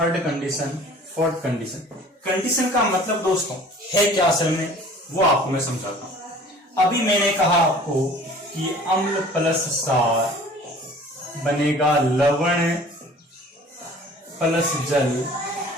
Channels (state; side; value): normal; both; correlation 0.48